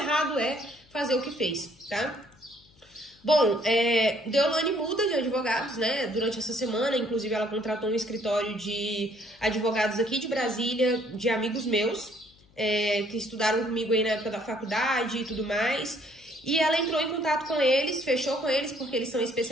é fazer o que fez, tá? Bom, Deolane muda de advogados, né, durante essa semana, inclusive ela contratou um escritório de advogados aqui de Brasília, de amigos meus, que estudaram comigo aí na época da faculdade e tudo mais, e ela entrou em contato com eles, fechou com eles, porque eles são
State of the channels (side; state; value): left; noise; hum, 30 dB below the sound